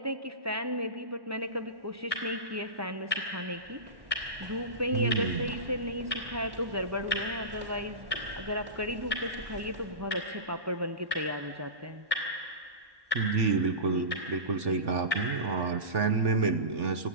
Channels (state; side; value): late; left; 1.1 ms